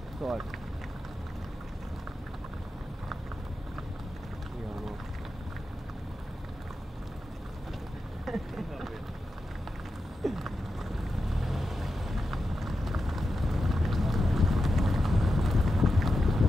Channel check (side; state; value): both; normal; correlation 0.90